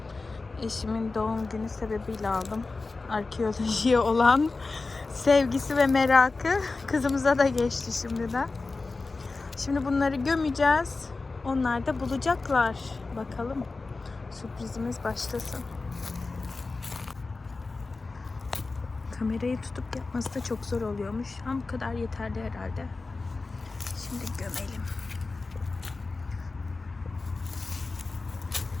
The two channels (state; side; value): quieter; right; 3.7 dB